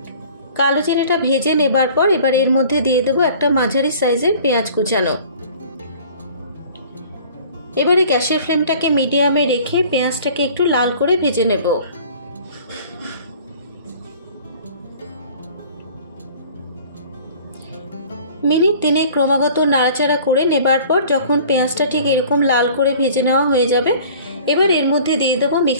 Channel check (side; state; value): both; inverted; correlation -0.48